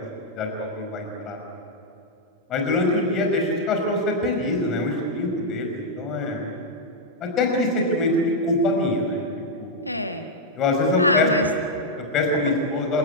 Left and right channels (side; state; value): both; normal; correlation -0.04